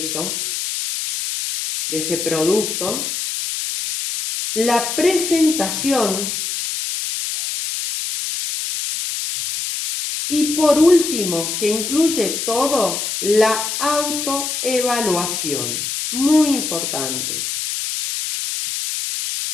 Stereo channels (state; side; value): noise; left; hiss, 3 dB below the sound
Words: de ese producto. La presentación. Y por último, que incluye todo, la autoevaluación. Muy importante.